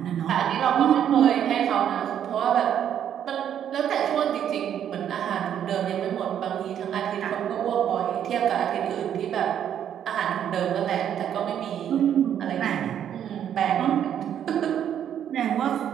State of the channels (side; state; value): left; quieter; 9.6 dB